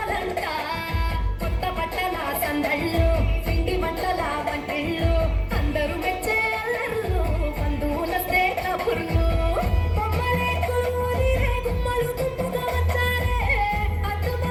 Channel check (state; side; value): identical; both; correlation 1.00